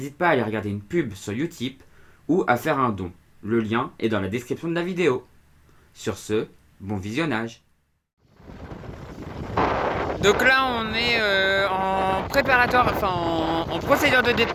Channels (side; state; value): both; identical; correlation 1.00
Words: pas à aller regarder une pub sur Utip ou à faire un don. Le lien est dans la description de la vidéo. Sur ce, bon visionnage. Donc là on est en préparatoire, en procédure de